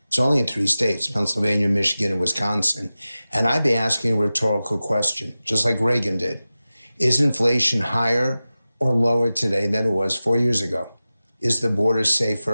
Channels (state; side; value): inverted; both; correlation -0.96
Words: It's only in 3 states, Pennsylvania, Michigan, and Wisconsin. And I'd be asking a rhetorical question, just like Reagan did. Is inflation higher or lower today than it was 4 years ago? Is the border